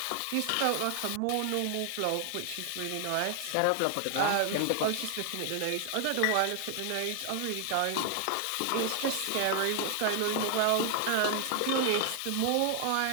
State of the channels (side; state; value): both; different; correlation 0.00